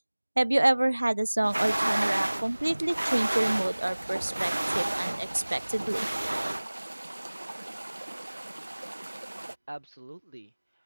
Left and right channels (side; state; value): both; inverted; correlation -1.00